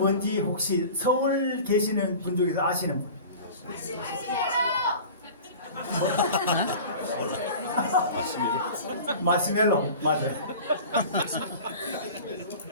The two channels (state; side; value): inverted; both; correlation -0.38